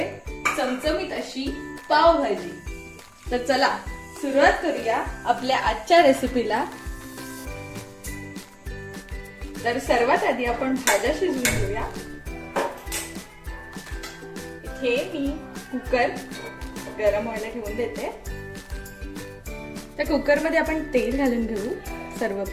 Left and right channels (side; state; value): both; identical; correlation 1.00